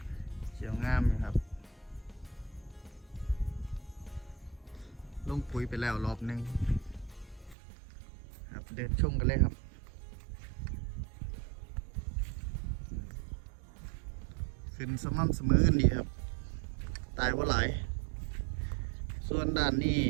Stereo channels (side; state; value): left; drops out; at 7.6 s